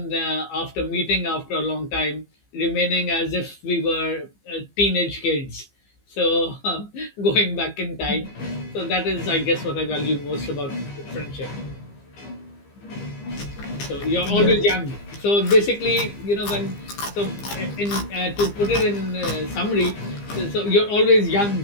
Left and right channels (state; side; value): late; right; 15 ms